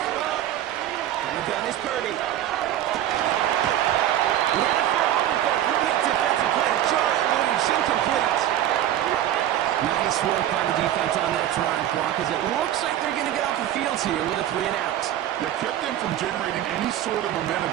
And the gun is Purdy. He had it for a moment, but a great defensive play to jar it loose. Incomplete. Nice work by the defense on that trying clock, as it looks like they're going to get off the field here with a 3 and out. That kept them from generating any sort of momentum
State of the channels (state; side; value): quieter; left; 12.1 dB